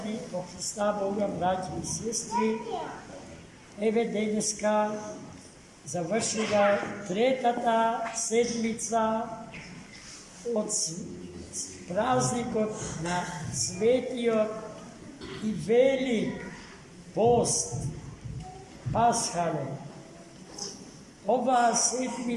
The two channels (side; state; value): both; identical; correlation 1.00